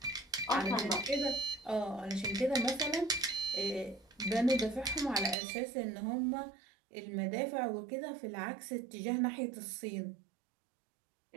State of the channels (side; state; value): left; drops out; at 5.4 s